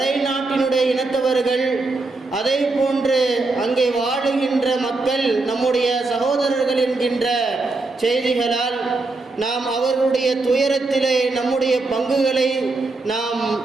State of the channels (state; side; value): quieter; left; 3.4 dB